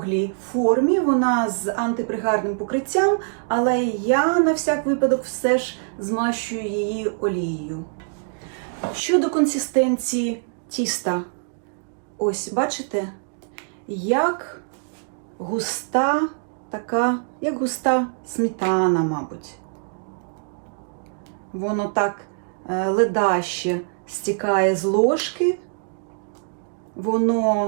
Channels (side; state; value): left; silent; digital silence